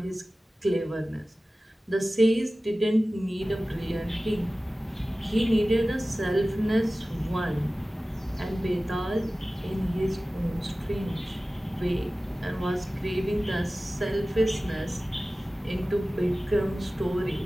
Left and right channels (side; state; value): both; normal; correlation 0.96